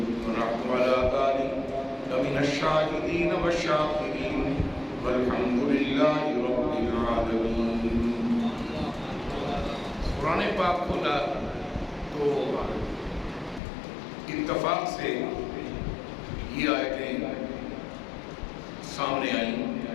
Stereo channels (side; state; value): right; drops out; at 13.6 s